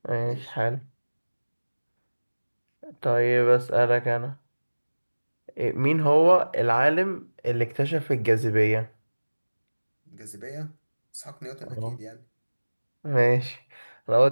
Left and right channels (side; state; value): both; inverted; correlation -1.00